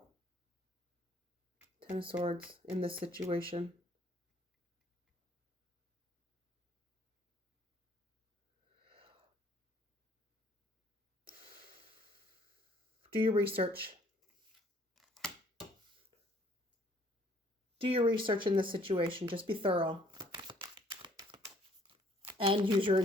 10 of Swords in this situation. Do your research. Do your research in this situation. Just be thorough. And use your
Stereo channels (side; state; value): both; normal; correlation 0.61